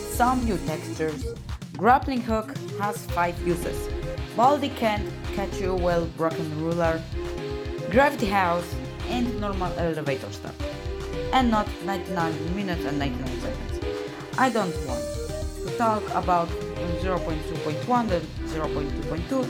some new textures, grappling hook has 5 uses, Baldi can catch you well broken ruler, gravity house, and normal elevator stuff, and not 99 minutes and 99 seconds. I don't want to talk about 0.2.1 and 0.2.2,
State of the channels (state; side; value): identical; both; correlation 1.00